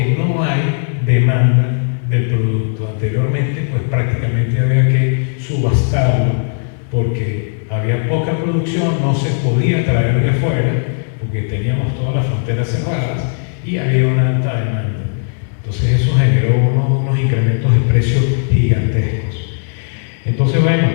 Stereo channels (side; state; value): right; silent; digital silence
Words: no hay demanda del producto. Anteriormente, pues prácticamente había que subastarlo porque había poca producción, no se podía traer de fuera porque teníamos todas las fronteras cerradas y había una alta demanda. Entonces eso generó unos incrementos de precios gigantescos. Entonces, bueno,